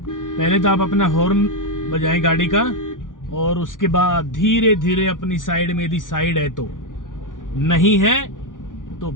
पहले तो आप अपना हॉर्न बजाएं गाड़ी का और उसके बाद धीरे धीरे अपनी साइड में, यदि साइड है तो, नहीं है तो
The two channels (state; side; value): late; right; 0.88 ms